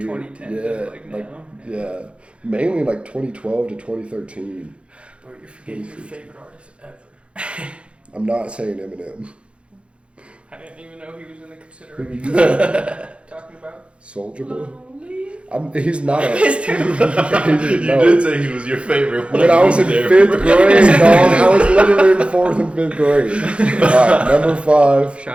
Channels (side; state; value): left; late; 0.059 ms